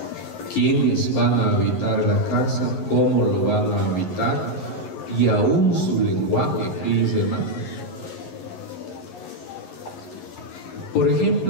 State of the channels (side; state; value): right; late; 11 ms